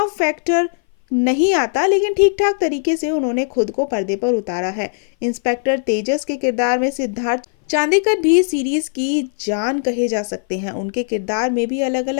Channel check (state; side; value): silent; right; 59 dB below the other